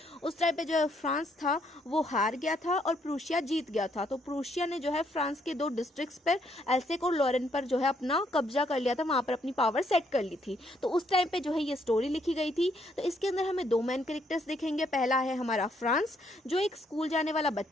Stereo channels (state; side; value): normal; both; correlation 0.71